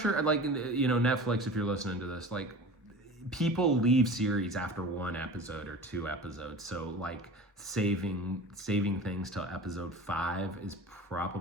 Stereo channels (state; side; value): normal; both; correlation 0.37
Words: like, Netflix, if you're listening to this, like, people leave series after 1 episode or 2 episodes. So like saving things till episode 5 is